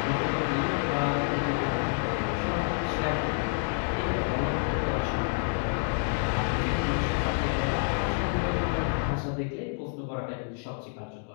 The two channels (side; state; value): right; silent; 59 dB below the other